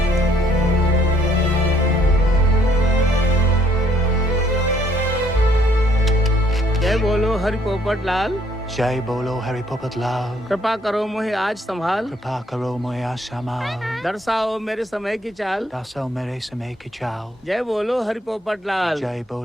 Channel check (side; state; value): both; normal; correlation 0.66